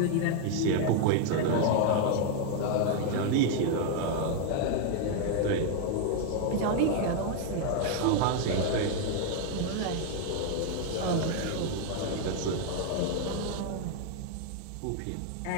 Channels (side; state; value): both; different; correlation 0.00